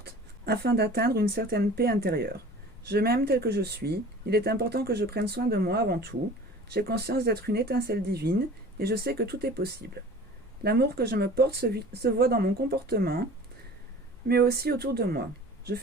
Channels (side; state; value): both; normal; correlation 0.43